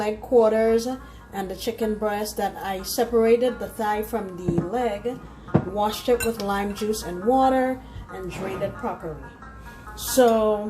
quarters and the chicken breast that I separated the thigh from the leg, washed it with lime juice and water, and drained it properly.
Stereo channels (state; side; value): identical; both; correlation 1.00